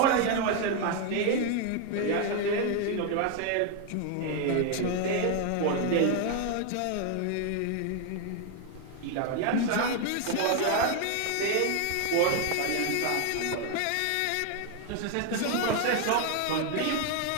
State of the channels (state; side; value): different; both; correlation 0.00